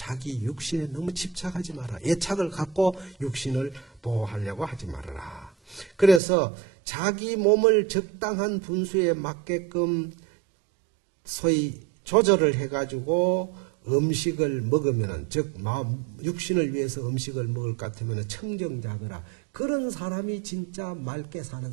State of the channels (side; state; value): left; drops out; at 6.2 s